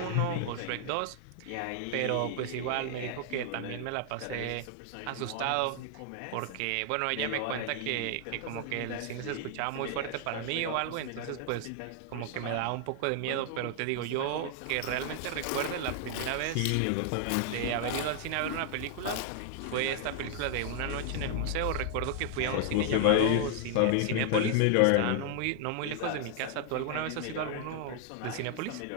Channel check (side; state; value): both; different; correlation 0.00